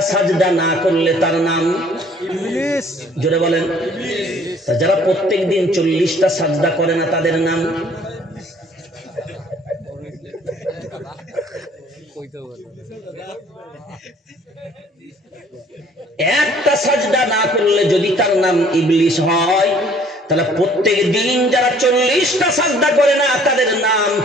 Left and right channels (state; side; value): normal; both; correlation 0.57